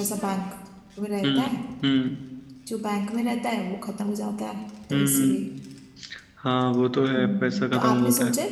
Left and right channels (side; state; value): both; identical; correlation 1.00